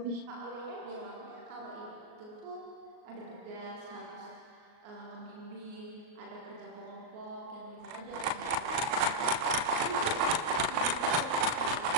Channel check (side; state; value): left; late; 38 ms